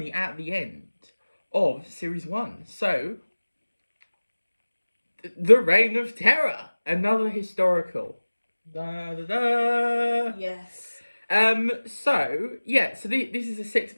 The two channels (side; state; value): both; inverted; correlation -1.00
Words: at the end of series 1. So, the Reign of Terror, another historical. Da, da, da. Yes. So this is a